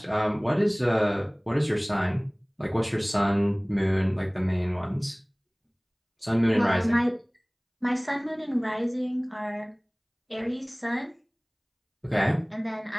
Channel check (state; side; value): identical; both; correlation 1.00